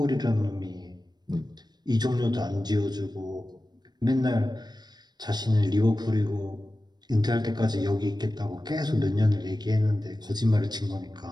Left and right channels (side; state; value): left; late; 0.20 ms